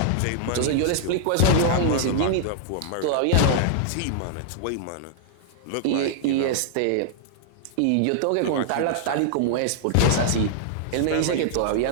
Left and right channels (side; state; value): both; different; correlation -0.01